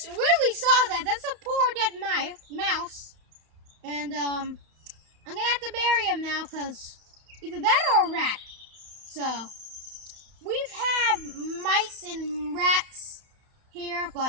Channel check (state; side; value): late; left; 31 ms